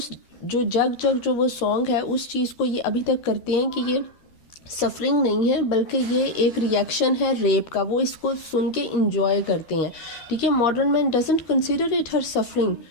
जो जग जग जो वो सॉन्ग है उस चीज़ को ये अभी तक करते हैं कि ये सफरिंग नहीं है, बल्कि ये एक रिएक्शन है रेप का। वो इसको सुन के इंजॉय करते हैं, ठीक है। Modern man doesn't consider it her suffering,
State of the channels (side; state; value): right; late; 12 ms